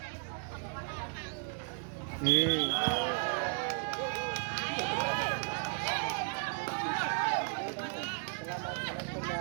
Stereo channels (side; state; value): left; quieter; 38.1 dB